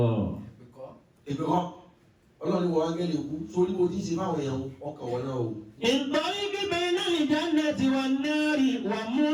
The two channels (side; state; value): both; identical; correlation 1.00